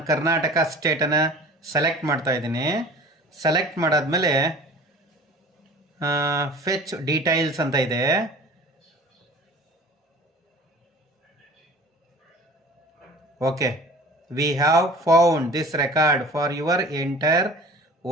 ಕರ್ನಾಟಕ ಸ್ಟೇಟನ್ನು ಸೆಲೆಕ್ಟ್ ಮಾಡ್ತಾ ಇದ್ದೀನಿ. ಸೆಲೆಕ್ಟ್ ಮಾಡಾದ್ಮೇಲೆ ಫೆಚ್ ಡೀಟೈಲ್ಸ್ ಅಂತ ಇದೆ. Okay, V have found this record for your enter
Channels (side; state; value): both; normal; correlation 0.44